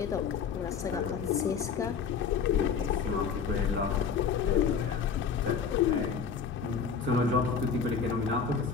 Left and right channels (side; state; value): right; quieter; 6.3 dB